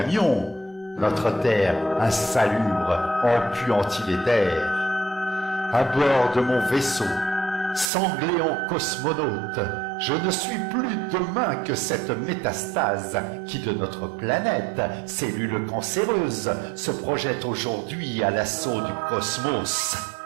notre terre insalubre, empuantie les terres. À bord de mon vaisseau, sanglé en cosmonaute, Je ne suis plus demain que cette métastase qui de notre planète, cellule cancéreuse, se projette aujourd'hui à l'assaut du cosmos.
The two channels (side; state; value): left; drops out; at 7.9 s